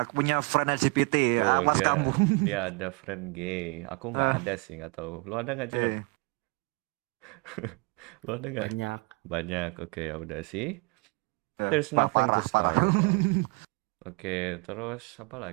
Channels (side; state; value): left; quieter; 30.0 dB